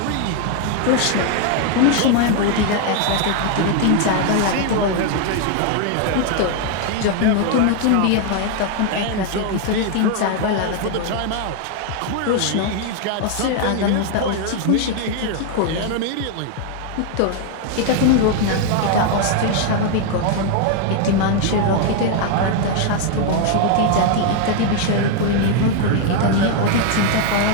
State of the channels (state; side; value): different; both; correlation 0.00